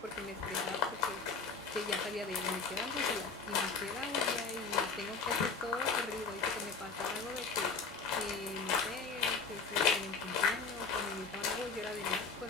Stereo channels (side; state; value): right; quieter; 4.8 dB